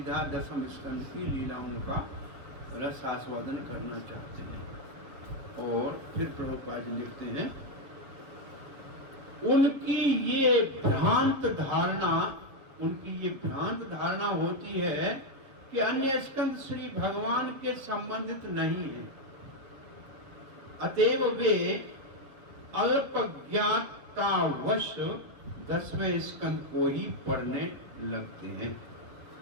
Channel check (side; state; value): left; late; 7.1 ms